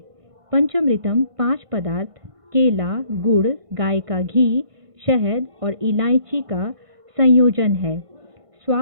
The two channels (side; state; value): left; late; 1.5 ms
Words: पंचमृतम 5 पदार्थ केला, गुड़, गाय का घी, शहद और इलायची का संयोजन है।